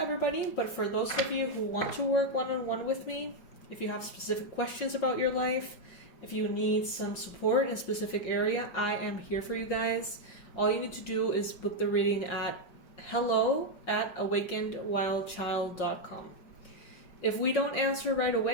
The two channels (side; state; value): right; late; 5.6 ms